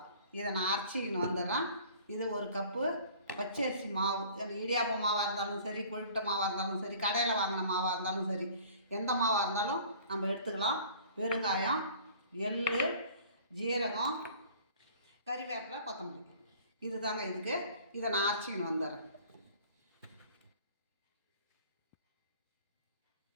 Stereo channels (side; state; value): both; inverted; correlation -0.49